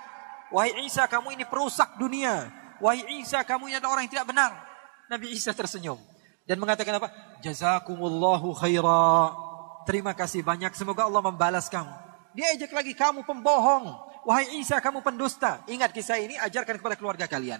Wahai Isa, kamu ini perusak dunia. Wahai Isa, kamu ini adalah orang yang tidak benar." Nabi Isa tersenyum dan mengatakan apa? "Jazakumullahu khaira." Terima kasih banyak, semoga Allah membalas kamu. Dia ejek lagi, "Kamu pembohong. Wahai Isa, kamu pendusta." Ingat kisah ini, ajarkan kepada keluarga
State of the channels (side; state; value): left; silent; 60 dB below the other